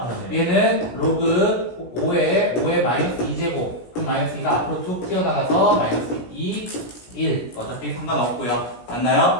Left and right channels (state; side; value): late; right; 17 ms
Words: 네. 얘는 로그 5에 마이너스 2제곱 그럼 마이너스 2가 앞으로 툭 튀어나가서 마이너스 2, 1 어차피 상관없고요.